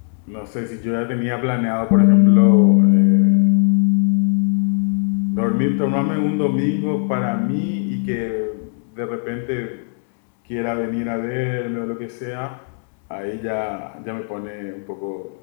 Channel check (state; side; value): silent; right; 56 dB below the other